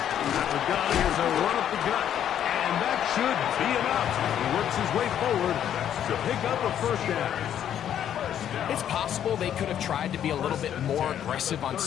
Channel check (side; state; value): right; quieter; 10.0 dB